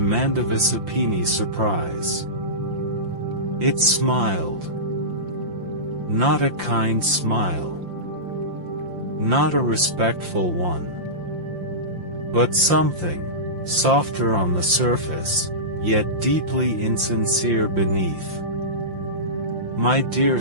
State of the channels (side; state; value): left; late; 5.8 ms